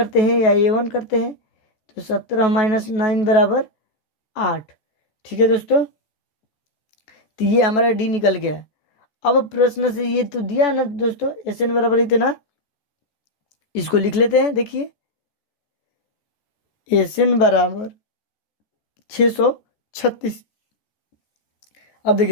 हैं या A1 करते हैं, तो 17 माइनस 9 बराबर 8। ठीक है दोस्तों, तो ये हमारा D निकल गया। अब प्रश्न से ये तो दिया ना दोस्तों SN बराबर इतना, इसको लिख लेते हैं। देखिए SN बराबर 636। अब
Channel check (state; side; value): late; right; 14 ms